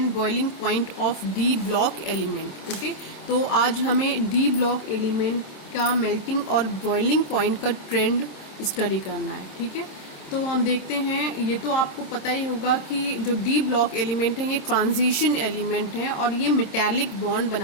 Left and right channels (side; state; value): right; late; 26 ms